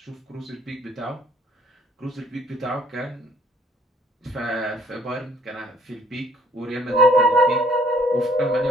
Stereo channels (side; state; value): both; normal; correlation 0.59